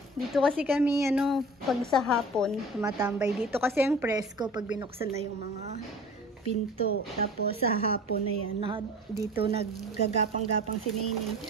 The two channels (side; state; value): both; normal; correlation 0.41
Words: Dito kasi kami, ano, pag sa hapon, tumatambay. Dito kasi ang presko pag binuksan na yung mga pinto. Tapos sa hapon na yan, dito naggagapang-gapang si Nene.